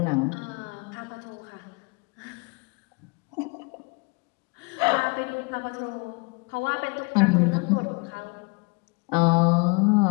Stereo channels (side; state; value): right; quieter; 30.5 dB